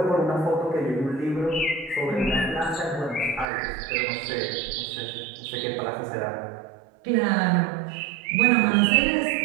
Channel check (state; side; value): drops out; left; at 3.5 s